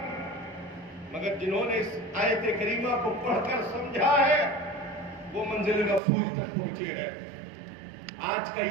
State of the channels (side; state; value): left; drops out; at 6.0 s